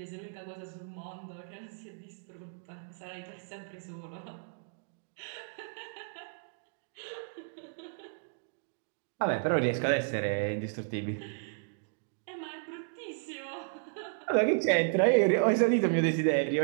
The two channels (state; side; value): silent; left; digital silence